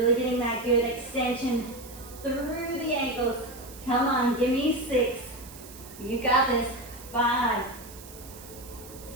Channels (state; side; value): noise; right; hiss, 17 dB below the sound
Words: getting that good extension through the ankles. Come on, give me 6. You got this. 5.